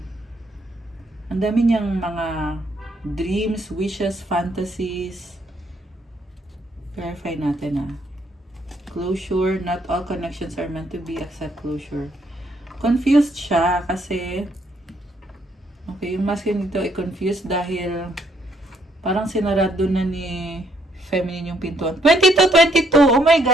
ang dami niyang mga dreams, wishes, fantasies. Verify natin Closure, not all connections are meant to be, accept closure. Confused siya kasi okay, yung masculine dito ay confused dahil parang sinarado na ni feminine yung pintuan. 22! Oh my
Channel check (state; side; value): normal; both; correlation 0.71